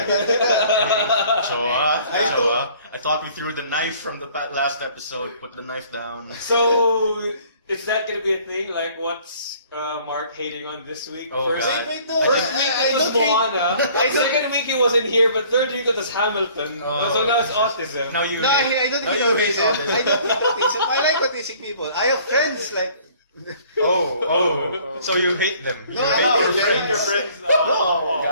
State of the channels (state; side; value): inverted; both; correlation -0.55